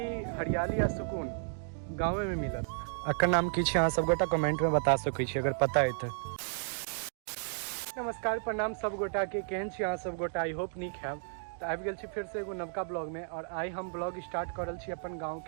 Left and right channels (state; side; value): silent; left; digital silence